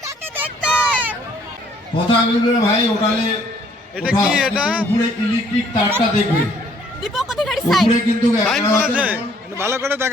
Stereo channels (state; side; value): normal; both; correlation 0.63